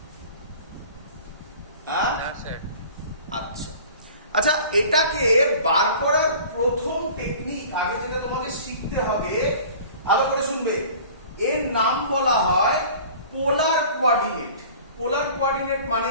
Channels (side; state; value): both; inverted; correlation -0.44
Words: আচ্ছা আচ্ছা, এটাকে বার করার প্রথম টেকনিক আগে যেটা তোমাকে শিখতে হবে, ভালো করে শুনবে, এর নাম বলা হয় পোলার কোঅর্ডিনেট। পোলার কোঅর্ডিনেট মানে